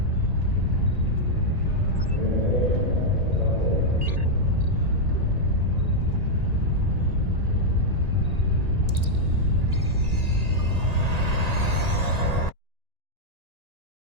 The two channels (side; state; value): left; late; 1.8 ms